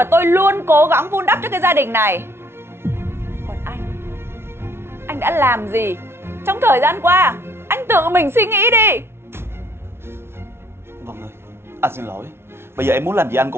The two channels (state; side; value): late; left; 0.12 ms